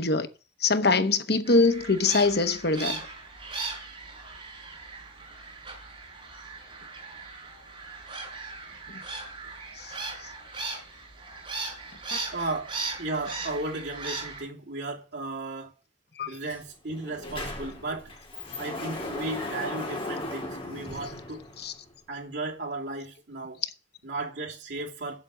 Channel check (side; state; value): both; normal; correlation 0.09